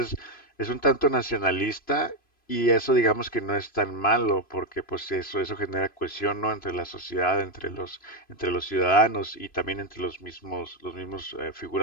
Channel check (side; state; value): right; late; 3.0 ms